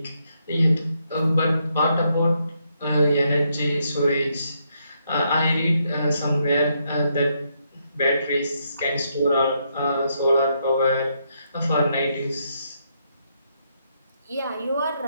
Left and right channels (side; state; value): both; inverted; correlation -0.77